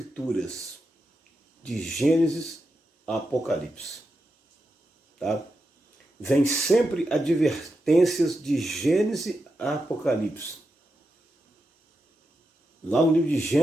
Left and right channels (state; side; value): normal; both; correlation 0.87